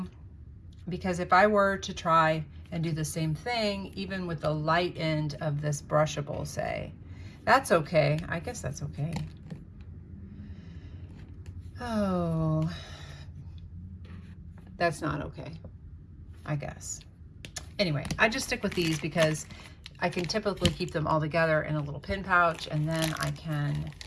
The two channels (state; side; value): identical; both; correlation 1.00